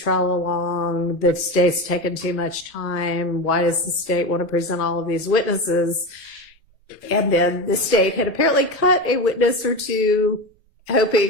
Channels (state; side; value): normal; both; correlation 0.21